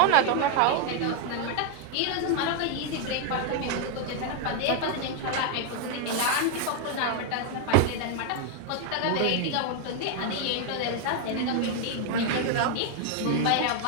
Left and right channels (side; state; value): both; different; correlation 0.00